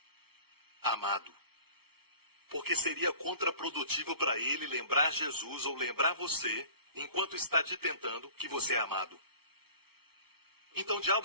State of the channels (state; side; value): late; left; 0.95 ms